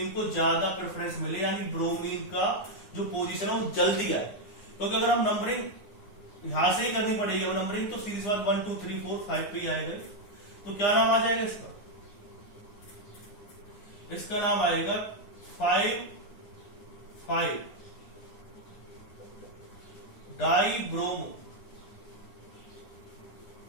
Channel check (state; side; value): late; right; 9.8 ms